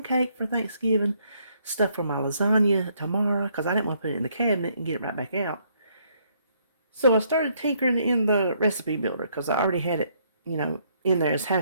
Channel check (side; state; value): both; inverted; correlation -0.69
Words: cake for Thanksgiving, stuff for my lasagna tomorrow, because I didn't want to put it in the cabinet and get it right back out. So I started tinkering in the recipe builder, because I already had it, in there as